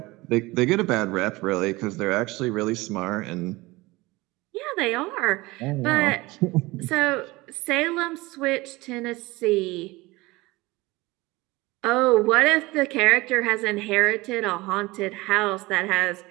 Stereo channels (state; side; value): quieter; left; 21.3 dB